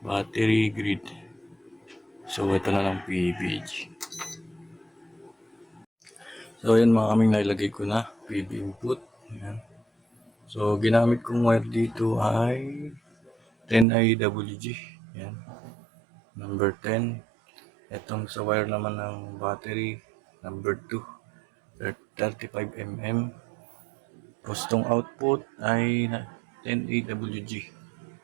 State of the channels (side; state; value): left; drops out; at 13.9 s